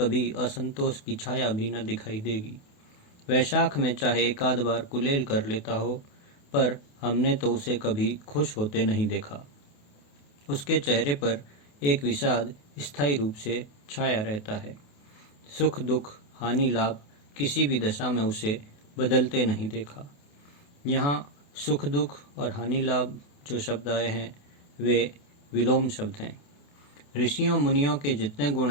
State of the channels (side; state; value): right; late; 28 ms